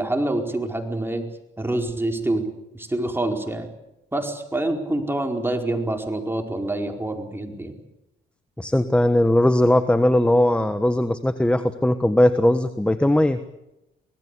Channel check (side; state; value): both; normal; correlation 0.93